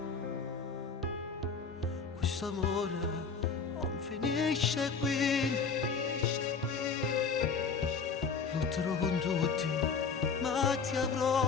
Questo amore non finisce qui, lotterò con tutti, ma ti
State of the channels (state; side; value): quieter; right; 5.3 dB